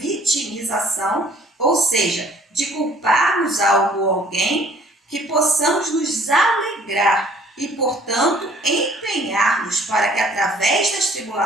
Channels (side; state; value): both; normal; correlation 0.56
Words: ou seja, de culparmos algo ou alguém, que possamos nos alegrar e, portanto, empenhar-nos para que, através das